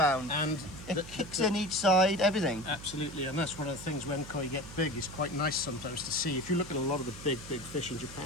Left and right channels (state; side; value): noise; right; hum, 14 dB below the sound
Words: And It kicks in each side, everything. Absolutely, and that's one of the things when koi get big. It's quite nice sometimes to see. If you look at a lot of the big fish in